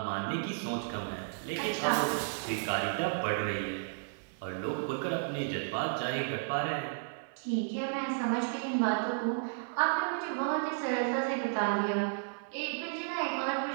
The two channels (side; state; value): left; silent; digital silence